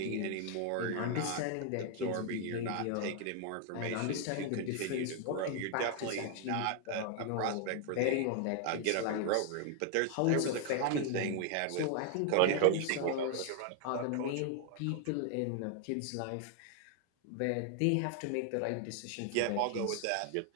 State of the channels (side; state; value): both; different; correlation 0.00